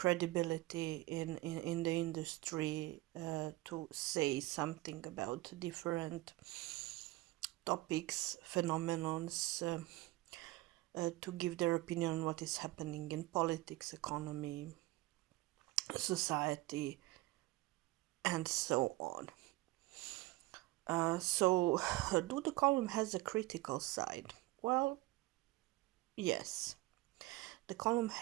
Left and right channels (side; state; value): left; quieter; 19.2 dB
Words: in the industry to say something about different topics, phenomenons, to give their opinion on what is happening in politics, economy, society, and so on. So, do the column has a critical side? Well, yes, the column